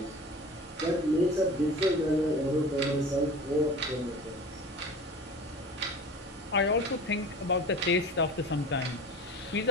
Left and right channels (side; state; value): both; normal; correlation 0.37